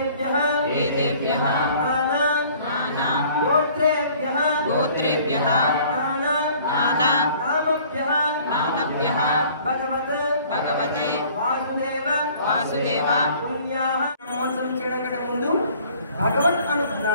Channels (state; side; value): inverted; both; correlation -0.53